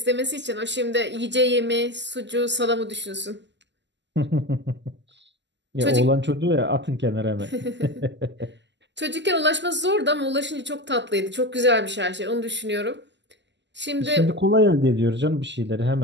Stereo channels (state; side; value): late; left; 0.52 ms